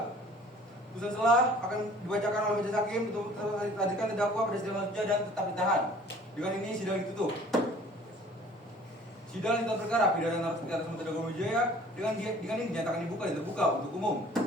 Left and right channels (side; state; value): both; normal; correlation 0.51